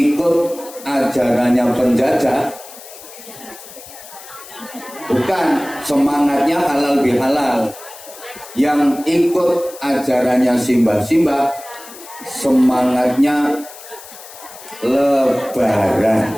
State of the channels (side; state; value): left; noise; hiss, 17 dB below the sound